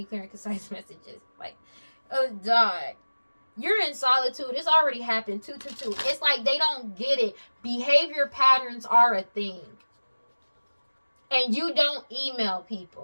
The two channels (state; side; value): inverted; both; correlation -1.00